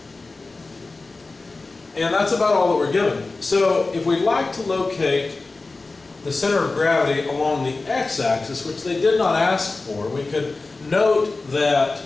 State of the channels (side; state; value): right; quieter; 3.6 dB